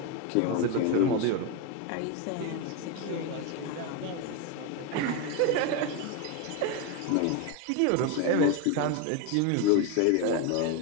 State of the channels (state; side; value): different; both; correlation 0.03